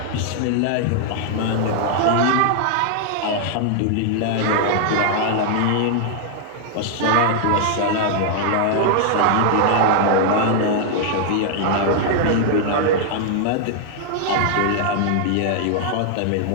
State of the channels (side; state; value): both; different; correlation -0.01